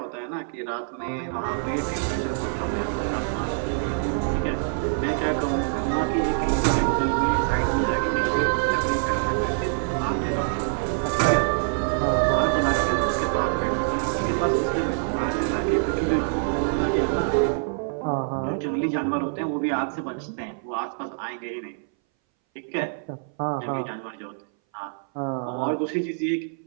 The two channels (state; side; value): silent; left; 60 dB below the other